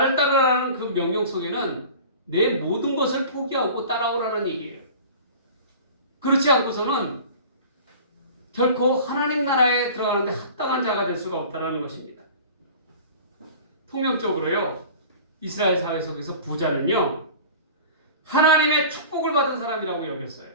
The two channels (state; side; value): inverted; both; correlation -0.40